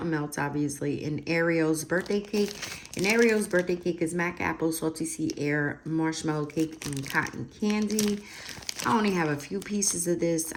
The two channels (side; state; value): both; identical; correlation 1.00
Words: Melts, obviously, and Ariel's birthday cake. And Ariel's birthday cake is mac apple, salty sea air, marshmallow cake, and cotton candy. I only have a few pieces of this.